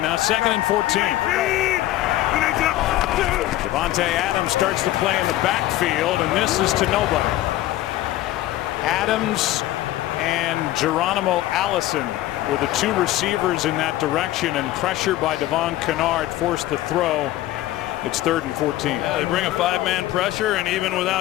now 2nd and 14. Devontae Adams starts to play in the backfield, and this is to nobody. Adams and Geronimo Allison were the 2 receivers in that direction, and pressure by Devon Kennard forced the throw It's 3rd and 14. Yeah, they bring a 5-man pressure, and even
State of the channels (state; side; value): quieter; right; 15.3 dB